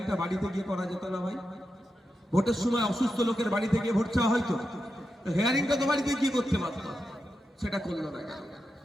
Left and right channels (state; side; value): normal; both; correlation 0.88